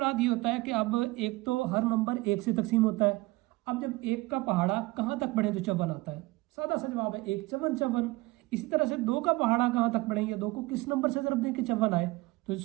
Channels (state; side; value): quieter; left; 21.5 dB